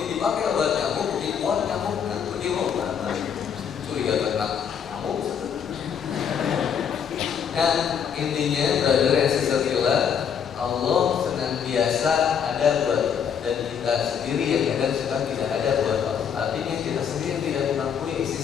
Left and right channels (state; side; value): quieter; right; 7.6 dB